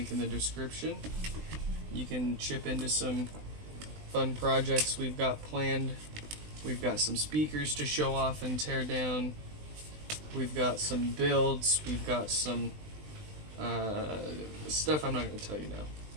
in the description. You can chip into some fun projects we've got planned. We've got some speakers to show off and tear down. We've got some builds. We've got some stuff I'm not going to tell you now.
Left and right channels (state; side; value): late; left; 20 ms